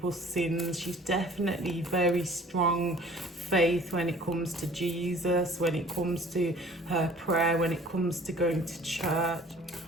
sins. She's definitely very strong faith when it comes to Jesus, when it comes to her prayer, when it comes to going to church.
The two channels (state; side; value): normal; both; correlation 0.50